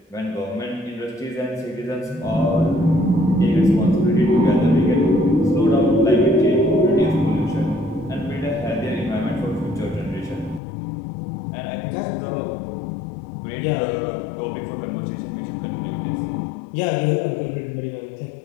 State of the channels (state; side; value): drops out; right; at 10.6 s